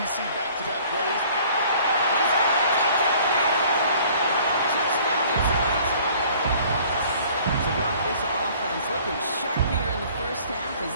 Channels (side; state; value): both; inverted; correlation -0.54